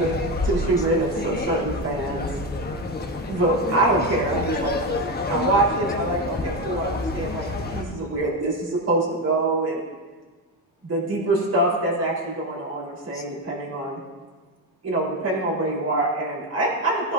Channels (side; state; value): both; normal; correlation 0.12